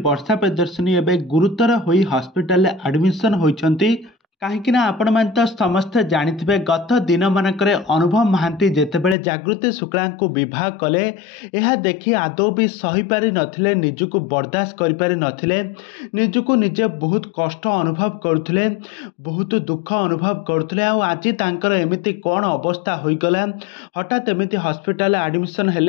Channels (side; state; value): right; drops out; at 9.2 s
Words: वर्षा प्रियदर्शिनी एवं गुरुतर होई हॉस्पिटल एडमिशन होइछंती। कहीं आपण मैंने तो समस्ते जानिथिबे गत दिन मानकर अनुभव महांती जेतेबेले जागृति शुक्ला को विवाह कले यह देखि आदौ भी सही पारि नथिले, निजको बर्दाश्त करि पारि नथिले, निजको निजे बहुत कष्ट अनुभव करुथिले, बहुत दुख अनुभव करुथिले। आ आज तांकर एमिति कोन अवस्था होइगला, हठात एमिति हॉस्पिटल एडमिशन